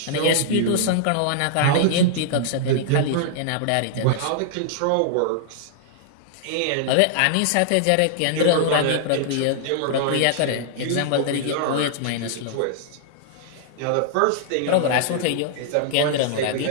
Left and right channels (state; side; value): different; both; correlation -0.01